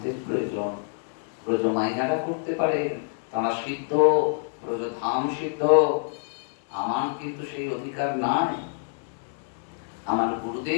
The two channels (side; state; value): right; silent; digital silence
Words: প্রয়োজন। ব্রজমাইয়ারা করতে পারে, তারা সিদ্ধ, ব্রজধাম সিদ্ধ। আমার কিন্তু সেই অধিকার নাই। আমার